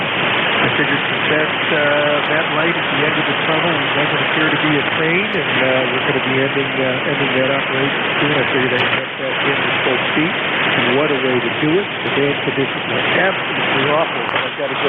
figured since that light at the end of the tunnel doesn't appear to be a train, and we're going to be ending that operation soon, I figured I'd get back in with full speed. And what a way to do it. The band conditions are absolutely awful. I've got a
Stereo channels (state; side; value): identical; both; correlation 1.00